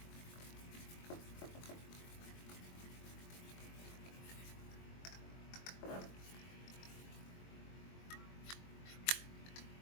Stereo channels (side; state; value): right; late; 22 ms